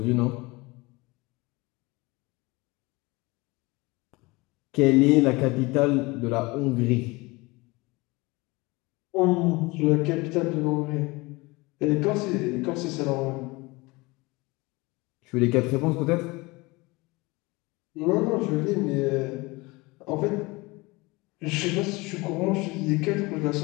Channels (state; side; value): quieter; right; 23.7 dB